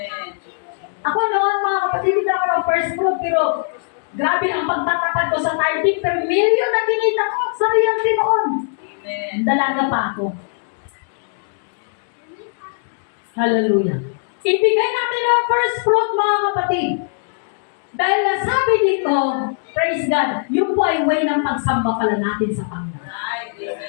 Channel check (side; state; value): right; silent; digital silence